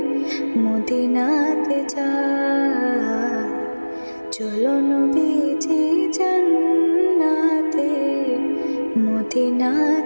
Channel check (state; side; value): inverted; both; correlation -1.00